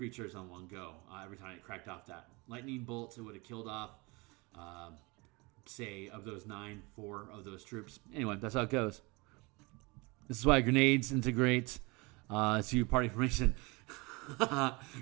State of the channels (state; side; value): quieter; left; 26.2 dB